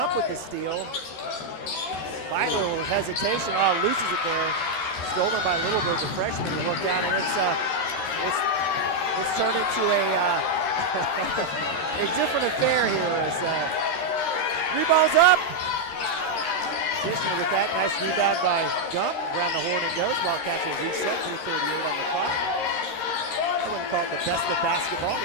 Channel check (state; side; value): late; right; 13 ms